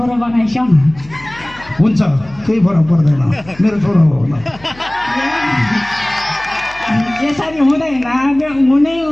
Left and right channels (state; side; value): noise; left; hum, 22 dB below the sound